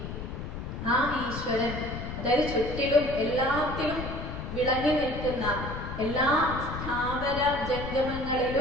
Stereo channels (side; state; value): left; noise; rumble, 7 dB below the sound